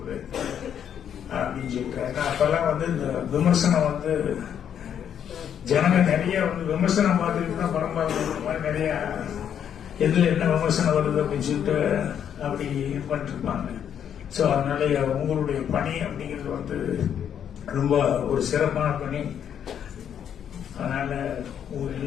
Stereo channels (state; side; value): quieter; right; 8.9 dB